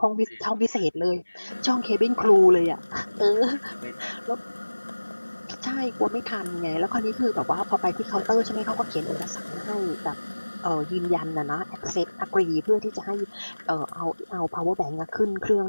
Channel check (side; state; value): both; inverted; correlation -1.00